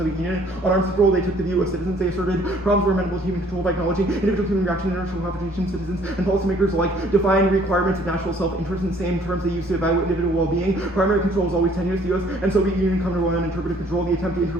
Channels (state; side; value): normal; both; correlation 0.59